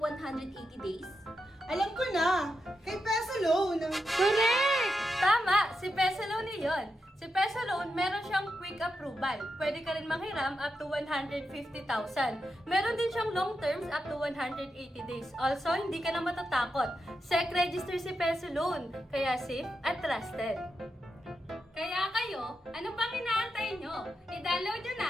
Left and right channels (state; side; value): normal; both; correlation 0.86